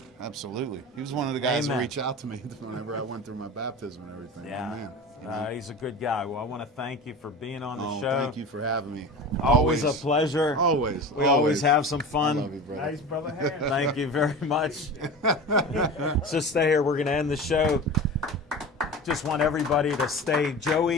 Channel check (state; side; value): normal; both; correlation 0.32